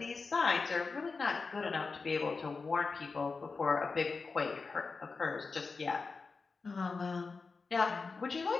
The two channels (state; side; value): quieter; right; 4.4 dB